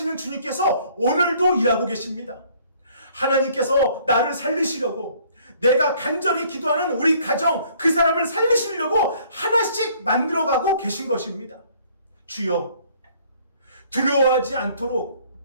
주님께서 오늘도 일하고 계십니다. 하나님께서 나를 살리시려고, 내가 간절히 기도하는 우리 가정, 그 사람을 살리시려고 하나씩 만들어가고 계신 것입니다. 주여, 두려워하지 않도록,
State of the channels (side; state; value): both; inverted; correlation -0.59